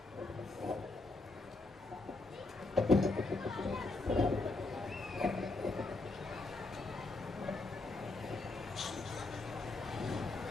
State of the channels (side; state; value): right; quieter; 3.2 dB